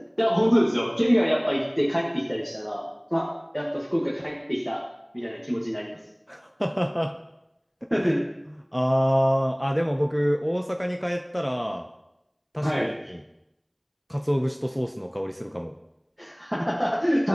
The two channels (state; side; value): identical; both; correlation 1.00